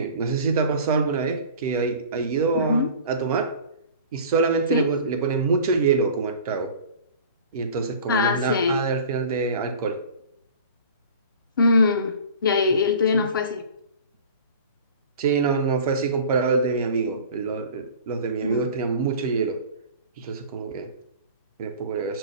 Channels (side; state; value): both; inverted; correlation -0.42